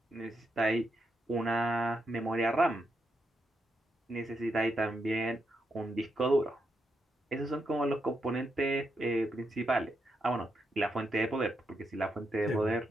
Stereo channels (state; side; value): normal; both; correlation 0.82